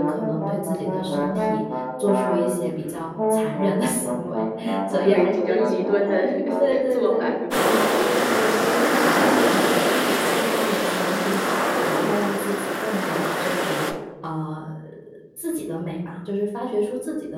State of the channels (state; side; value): identical; both; correlation 1.00